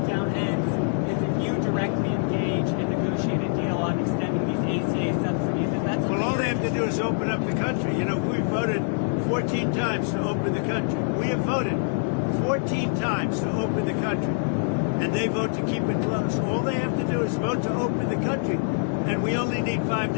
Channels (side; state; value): right; silent; digital silence